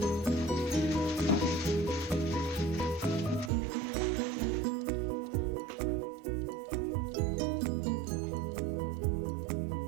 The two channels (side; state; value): left; drops out; at 3.5 s